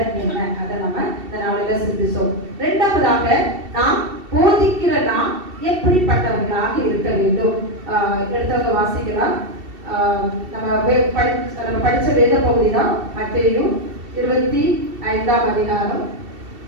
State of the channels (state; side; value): late; left; 2.7 ms